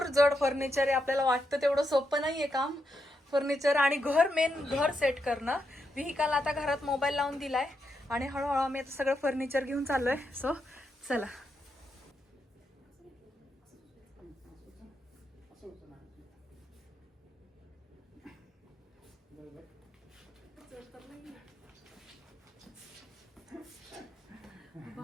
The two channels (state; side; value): normal; both; correlation 0.83